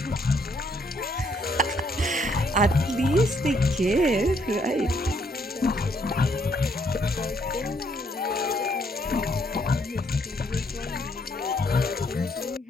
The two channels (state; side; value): normal; both; correlation 0.70